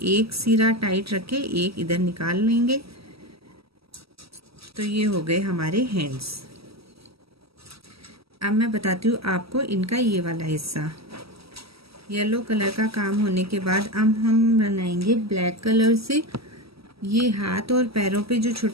एक सिरा टाइट रखे, एक इधर निकाल लेंगे। तो ये हो गए हमारे हैंड्स। अब मैं बताती हूँ आपको इनका ये वाला हिस्सा। येलो कलर का काम होने के बाद अब हम बनाएंगे ब्लैक कलर से ये हाथ और पैरों पे जो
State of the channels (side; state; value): left; late; 0.76 ms